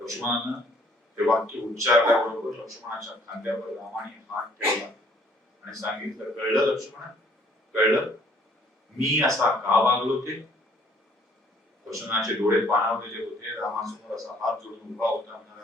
ते वाक्य उच्चारल्याबरोबर लक्ष्मणाच्या खांद्यावर रामाने हात ठेवला आणि सांगितलं कळलं लक्ष्मण? कळलं मी असा का वागलो ते? लक्ष्मणाचे डोळे पाणावलेले होते. रामासमोर असा हात जोडून उभा होता.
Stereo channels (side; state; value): both; normal; correlation 0.61